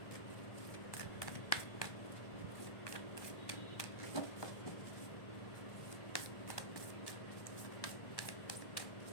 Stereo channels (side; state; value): right; late; 1.1 ms